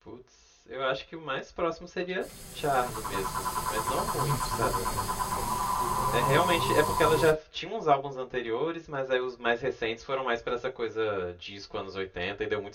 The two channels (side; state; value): both; identical; correlation 1.00